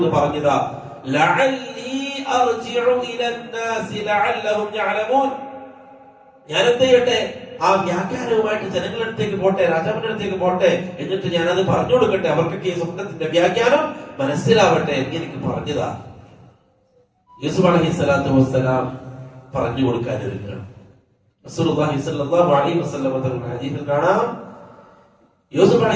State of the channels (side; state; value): both; identical; correlation 1.00